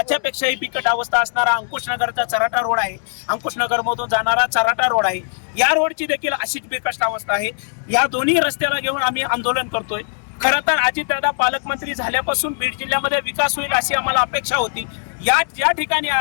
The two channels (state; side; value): silent; right; digital silence